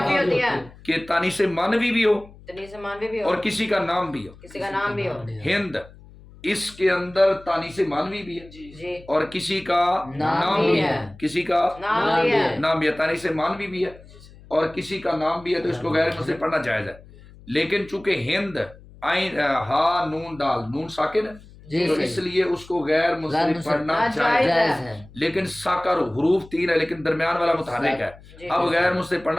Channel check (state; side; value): noise; left; hum, 22 dB below the sound